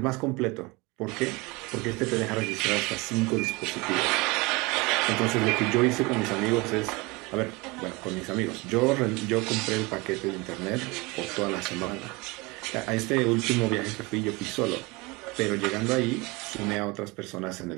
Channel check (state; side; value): quieter; left; 25.1 dB